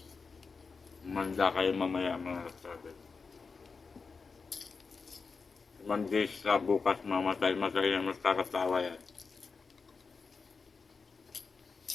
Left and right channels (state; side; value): quieter; right; 4.8 dB